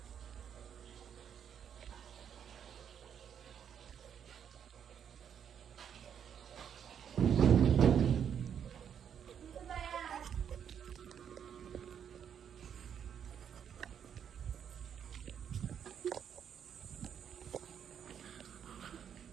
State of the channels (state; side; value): quieter; left; 8.3 dB